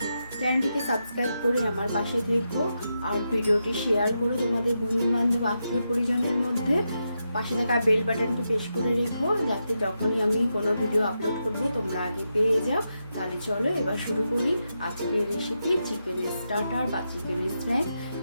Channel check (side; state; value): both; inverted; correlation -0.86